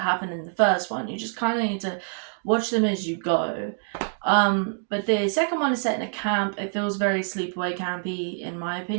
happen in the first one. You just kind of need to watch them as you go. But the second one is set in a camp. It feels very sleepaway campy in my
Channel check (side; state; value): left; silent; 61 dB below the other